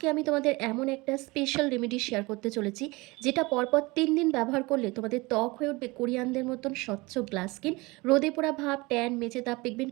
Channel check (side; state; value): left; quieter; 23.7 dB